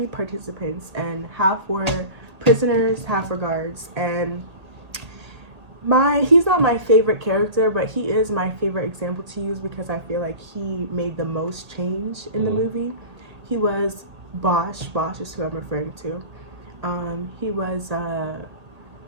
participants, and half were prisoners, half were guards, and he's not my favorite character, but he is my favorite example to use because I feel like he made the most change in the movie. He was Bosch is who I'm referring to. He was,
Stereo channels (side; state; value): left; late; 1.8 ms